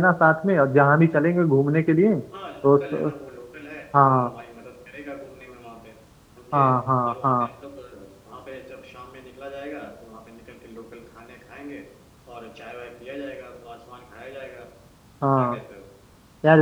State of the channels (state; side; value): identical; both; correlation 1.00